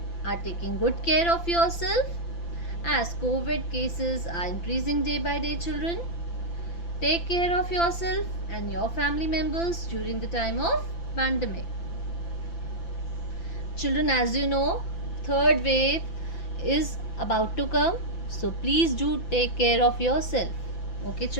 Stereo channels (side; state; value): right; late; 5.9 ms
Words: are taking good care of yourself as COVID cases are increasing day by day, children. Take care of yourself and your family members during the time of pandemic. Children, as you know, third wave is about to come, so please do take care of yourself. Okay,